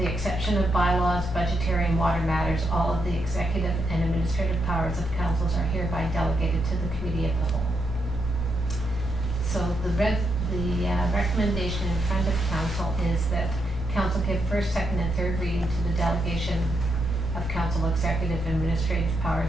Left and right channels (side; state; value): both; normal; correlation 0.81